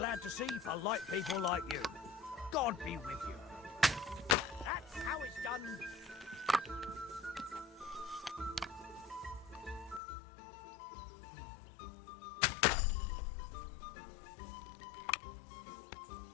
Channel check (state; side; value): drops out; right; at 10.0 s